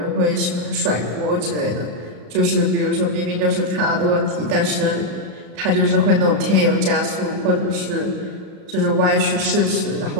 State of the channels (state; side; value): late; left; 35 ms